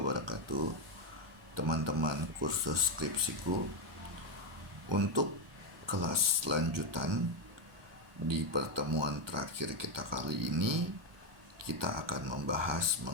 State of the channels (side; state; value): left; late; 1.2 ms